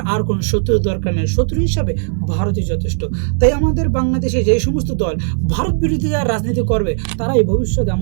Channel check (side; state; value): left; silent; 59 dB below the other